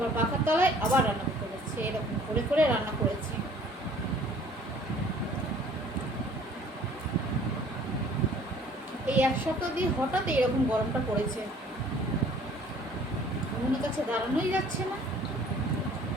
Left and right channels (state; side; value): normal; both; correlation 0.54